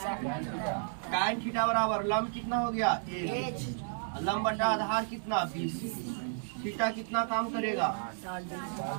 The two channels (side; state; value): left; silent; digital silence